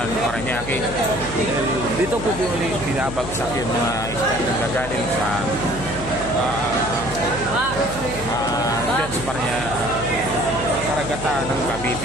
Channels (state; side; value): noise; right; hum, 11 dB below the sound